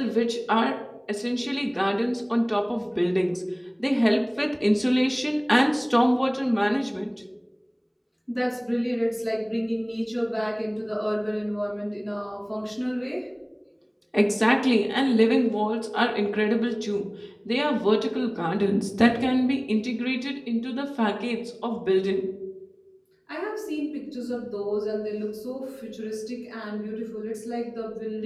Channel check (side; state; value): both; identical; correlation 1.00